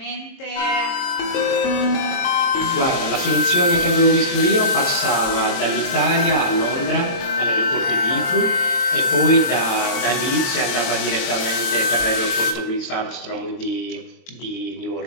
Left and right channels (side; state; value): right; late; 22 ms